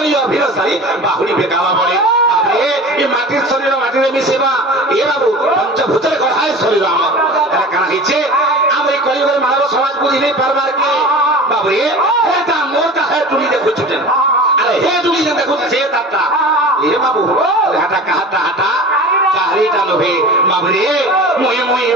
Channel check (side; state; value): both; normal; correlation 0.36